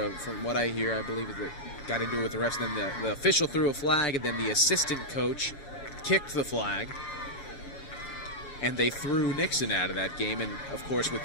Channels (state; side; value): late; right; 7.3 ms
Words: From what I hear, I believe that got into it with the refs. Then the official threw a flag, and then the assistant coach kicked the flag, and they threw Nixon out of that game. And of course, with